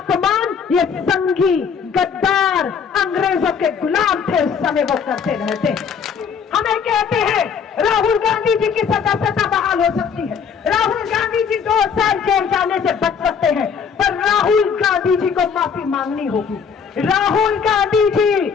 ये संघी गद्दार अंग्रेजों के गुलाम थे उस समय वो करते रहते। हमें कहते हैं राहुल गांधी जी की सदस्यता बहाल हो सकती है, राहुल गांधी जी 2 साल जेल जाने से बच सकते हैं, पर राहुल गांधी जी को माफी मांगनी होगी। राहुल गांधी जी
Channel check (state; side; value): quieter; right; 6.6 dB